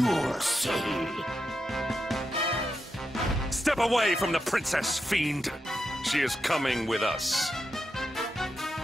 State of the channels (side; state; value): both; normal; correlation 0.86